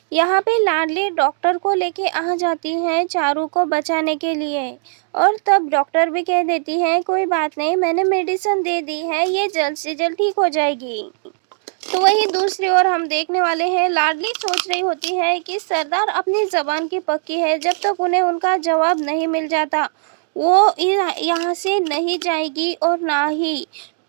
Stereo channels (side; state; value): left; silent; digital silence